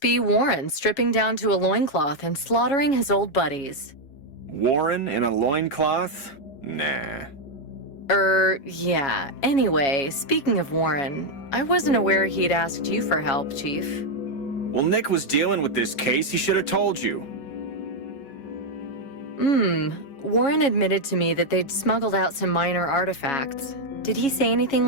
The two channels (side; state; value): right; late; 7.2 ms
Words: be Warren stripping down to a loincloth and slaughtering his old buddies. Warren in a loincloth? Nah. Yeah. Anyway, speaking of Warren, I wasn't aware he'd asked you for help, Chief. Well, Nick was dealing with this case. He should have told you. Warren admitted to me that they'd smuggled out some minor artifacts. Did he say anything